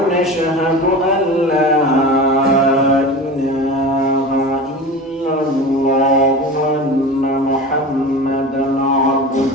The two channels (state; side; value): normal; both; correlation 0.31